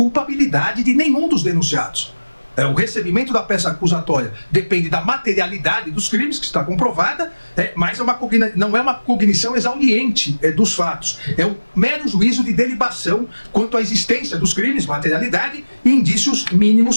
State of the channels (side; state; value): both; inverted; correlation -1.00